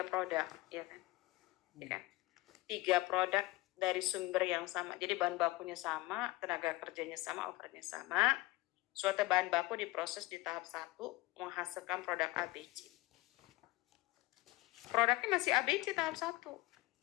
produk, ya kan? Ya kan? 3 produk dari sumber yang sama. Jadi bahan bakunya sama, tenaga kerjanya sama, overhead-nya sama. Suatu bahan baku diproses di tahap 1, menghasilkan produk ABC. Produknya masih ABC tahap 1.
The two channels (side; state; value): right; quieter; 20.3 dB